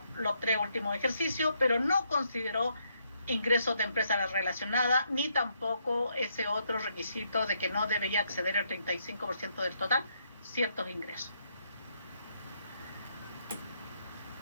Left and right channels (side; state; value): both; inverted; correlation -0.75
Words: los 3 últimos ejercicios, pero no consideró ingresos de empresa relacionada, ni tampoco ese otro requisito de que no debería exceder el 35% del total ciertos ingresos.